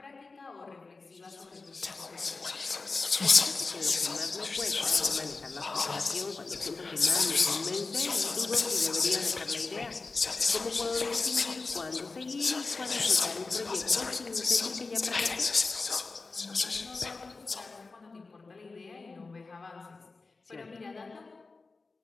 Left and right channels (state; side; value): quieter; right; 3.9 dB